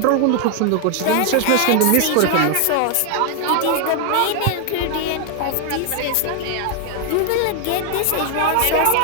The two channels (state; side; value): different; both; correlation 0.00